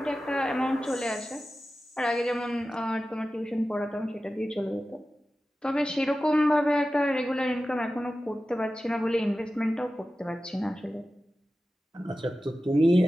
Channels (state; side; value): normal; both; correlation 0.94